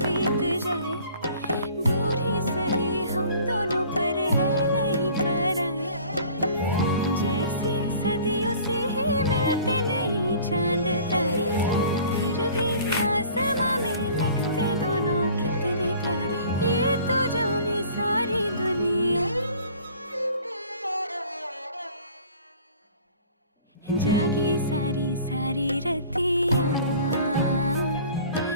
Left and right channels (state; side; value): inverted; both; correlation -0.49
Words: बीत जाए, दूर ही सही हम दोनों पर है नहीं पराए। जैसे सदियों से ही मिलते नहीं चांद तारे, फिर भी आसमां में लगते दोनों कितने प्यारे। ये तो जाने सारी दुनिया, जागी सारी सारी रतियाँ,